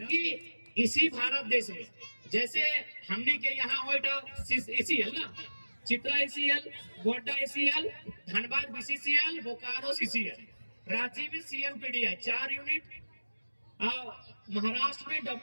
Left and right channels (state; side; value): inverted; both; correlation -1.00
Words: इसी भारत देश में जैसे हमने के यहाँ ACL ना, Chitra ACL, Godda ACL, Dhanbad BCCL, Bokaro CCL, Ranchi में CMPDI 4 यूनिट, महाराष्ट्र में